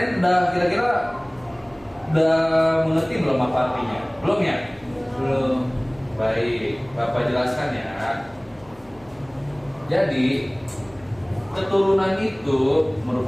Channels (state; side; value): noise; right; hum, 27 dB below the sound